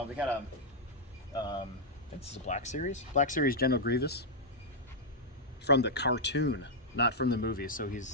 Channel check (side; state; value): both; normal; correlation -0.05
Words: we got this is a Black Series General Grievous from the cartoon, not from the movie. So